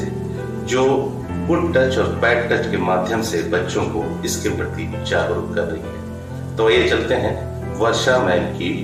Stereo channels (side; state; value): both; identical; correlation 1.00